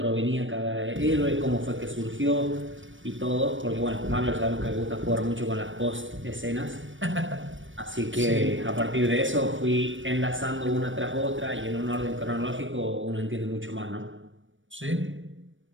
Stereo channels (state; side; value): late; left; 0.56 ms